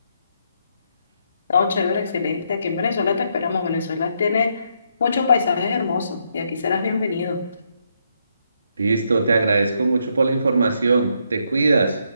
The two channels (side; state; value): both; inverted; correlation -0.76